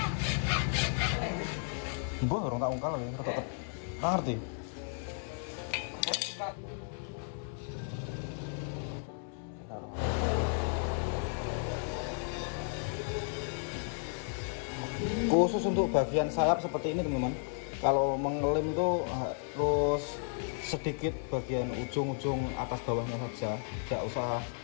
Mbah orang tak ungkal lho, rada ngerti. Khusus untuk bagian sayap seperti ini teman-teman, kalau mengelem itu harus sedikit bagian ujung-ujung atas bawahnya saja, tidak usah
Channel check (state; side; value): silent; right; 55 dB below the other